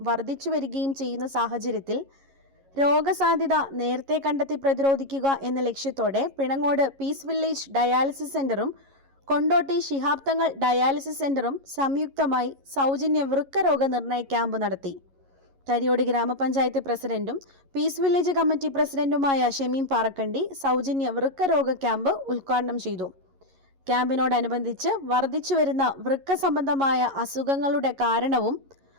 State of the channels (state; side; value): late; left; 11 ms